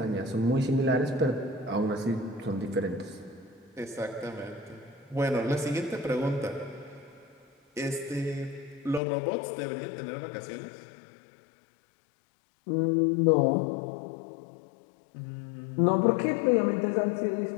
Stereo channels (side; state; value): right; drops out; at 9.0 s